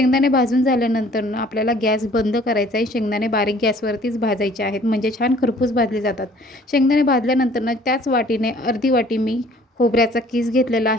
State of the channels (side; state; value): both; normal; correlation 0.55